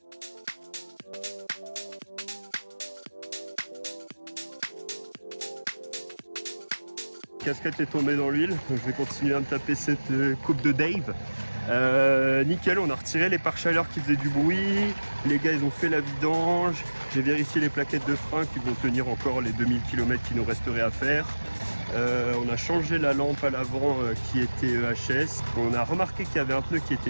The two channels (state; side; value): inverted; both; correlation -1.00